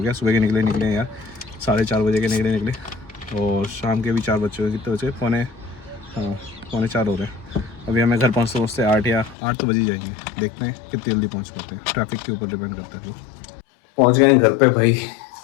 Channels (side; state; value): right; drops out; at 9.3 s